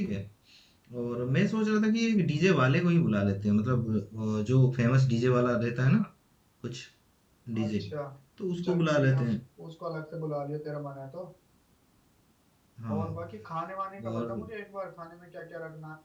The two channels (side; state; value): both; identical; correlation 1.00